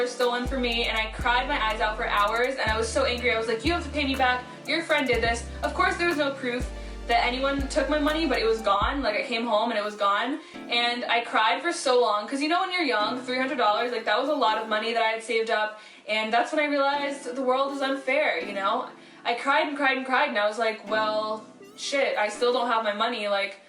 stolen from me and I cried my eyes out for hours, and I was so angry. I was like, you have to pay me back, your friend did this. Of course there was no proof that anyone took my money, but it was gone. Like, I came home and it was gone, and I cried for so long, because you know when you're young, $300, like, that was a lot of money that I had saved up, and that's when I realized the world is unfair, you know? I cried and cried and cried, and I was like, well, shit, I still don't have my money, like,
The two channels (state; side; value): identical; both; correlation 1.00